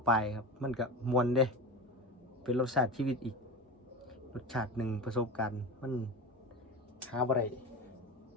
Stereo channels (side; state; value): both; normal; correlation 0.27